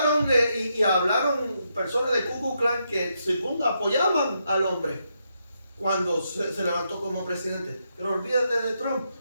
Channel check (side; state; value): both; inverted; correlation -0.81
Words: y hablaron personas de Ku Klux Klan que según apoyaban al hombre cuando se levantó como presidente. Pero olvídate de Trump.